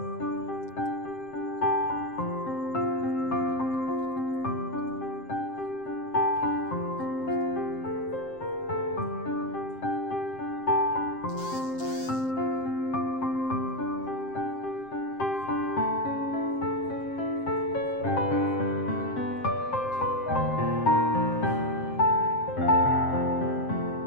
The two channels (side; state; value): right; late; 7.6 ms